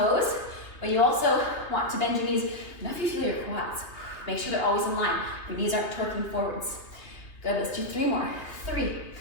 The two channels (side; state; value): right; late; 2.6 ms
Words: but you also want to bend your knees enough you feel your quads. Make sure they're always in line. Your knees aren't torquing forwards. Good, let's do 3 more. 3.